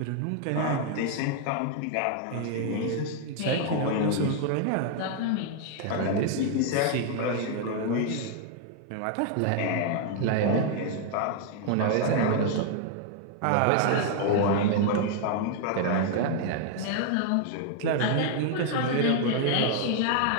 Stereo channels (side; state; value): both; different; correlation 0.00